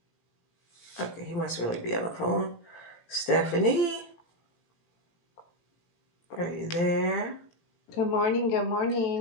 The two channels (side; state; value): right; late; 17 ms